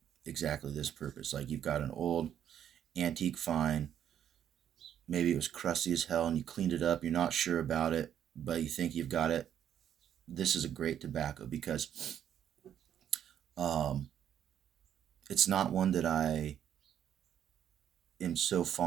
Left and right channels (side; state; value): left; quieter; 9.8 dB